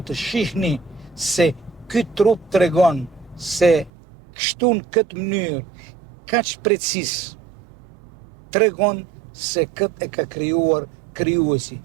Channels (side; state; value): left; drops out; at 3.9 s